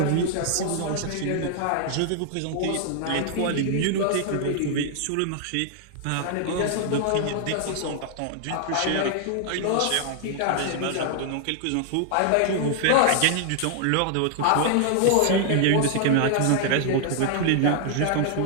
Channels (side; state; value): both; different; correlation 0.00